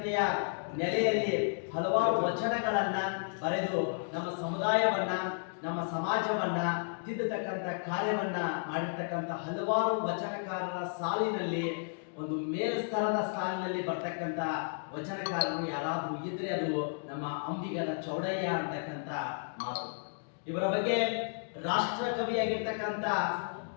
ನೆಲೆಯಲ್ಲಿ ಹಲವಾರು ವಚನಗಳನ್ನ ಬರೆದು ನಮ್ಮ ಸಮುದಾಯವನ್ನ, ನಮ್ಮ ಸಮಾಜವನ್ನ ತಿದ್ದತಕ್ಕಂಥ ಕಾರ್ಯವನ್ನ ಮಾಡಿರ್ತಕ್ಕಂಥ ಹಲವಾರು ವಚನಕಾರರ ಸಾಲಿನಲ್ಲಿ ಒಂದು ಮೇಲ್ಸ್ತರದ ಸಾಲಿನಲ್ಲಿ ಬರ್ತಕ್ಕಂಥ ವಚನಕಾರರು ಯಾರಾದ್ರೂ ಇದ್ರೆ ಅದು ನಮ್ಮ ಅಂಬಿಗರ ಚೌಡಯ್ಯ ಅಂತಕ್ಕಂಥ ಮಾತು. ಇವರ ಬಗ್ಗೆ ರಾಷ್ಟ್ರಕವಿಯಾಗಿರ್ತಕ್ಕಂಥ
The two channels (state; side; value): silent; right; digital silence